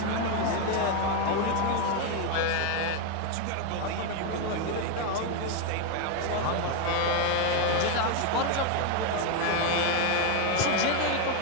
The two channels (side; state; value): both; different; correlation 0.01